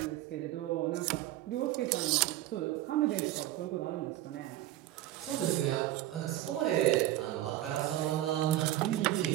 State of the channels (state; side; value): quieter; left; 14.6 dB